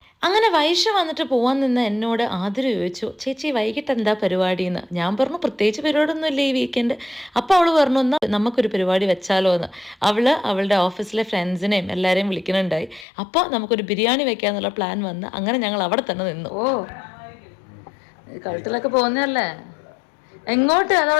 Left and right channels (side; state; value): right; drops out; at 13.1 s